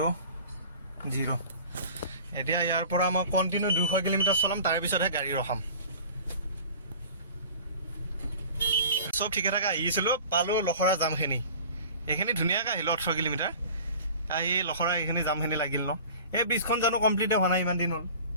এতিয়া ইয়াৰ পৰা মই কণ্টিনিউ 200 কিলোমিটাৰ চলাম তাৰপিছতহে গাড়ী ৰখাম চব ঠিকে থাকে আহিছিলোঁ পালোঁ লখৰা জামখিনি এইখিনি ধুনীয়াকৈ আহিলোঁ 18 কিলোমিটাৰ আহি লখৰা এইখিনি জামখিনি লাগিল ন এই ব্ৰিজখন জানো কমপ্লিটে হোৱা নাই ইমান দিন হ'ল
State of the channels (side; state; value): both; inverted; correlation -0.42